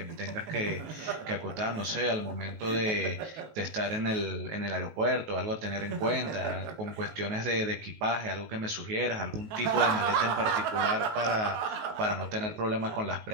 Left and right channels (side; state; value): left; late; 19 ms